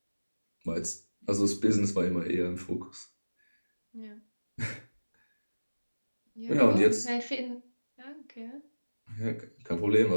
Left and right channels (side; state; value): both; inverted; correlation -1.00